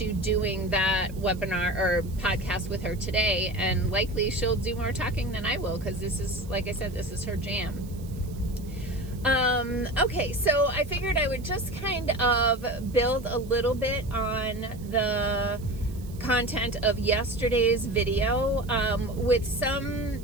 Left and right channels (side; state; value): right; noise; hiss, 23 dB below the sound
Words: doing that webinar or podcast with her today, and likely she'll do more talking than I will, because this is, like I said, this is her jam. Okay, so I figured I would just kind of build a little bit on the content of yesterday's video, with some